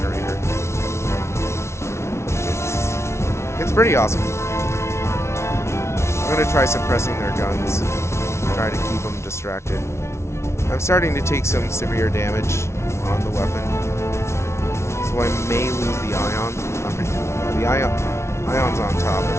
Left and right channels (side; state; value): right; late; 0.13 ms